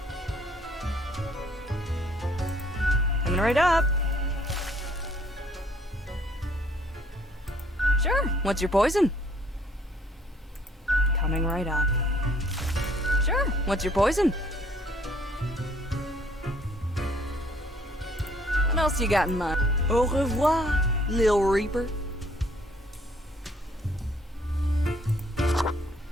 Coming right up. Sure. What's your poison? Coming right up. Sure. What's your poison? What else you got in mind? Au revoir, Lil Reaper.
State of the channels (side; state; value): both; normal; correlation 0.63